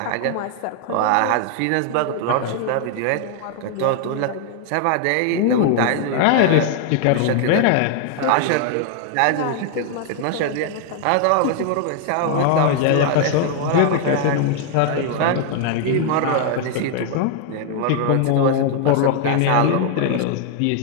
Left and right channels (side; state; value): both; different; correlation 0.00